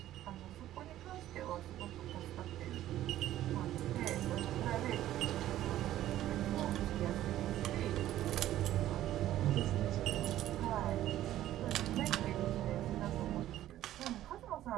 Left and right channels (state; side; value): quieter; left; 13.3 dB